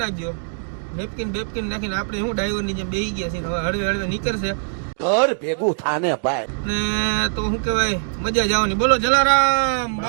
નાખજો. નેપકિન બેપકિન નાખીને આપણે શું ડ્રાઈવરની જેમ બેસી ગયા છીએ. હવે હળવે નીકળશે ઘર ભેગું થાને ભાઈ, ને તો શું કહેવાય મજા જવાની. બોલો જલારામ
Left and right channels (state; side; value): silent; left; digital silence